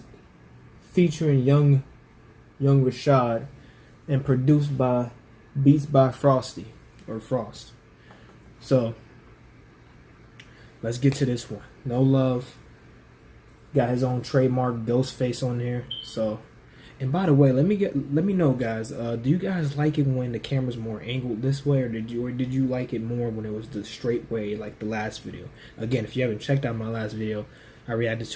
featuring Young Rashad and produced by Beats by Frosty or Frost. So let's get to this one. No Love got his own trademark ghost face on there. So, and by the way, let me know, guys. Do you guys like it when the camera's more angled this way, or did you like it more when it was the straight way, like the last video? Again, if you haven't checked out my last video, I reacted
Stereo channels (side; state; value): both; identical; correlation 1.00